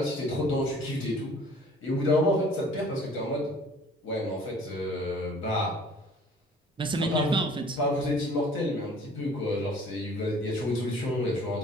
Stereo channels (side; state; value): both; normal; correlation 0.52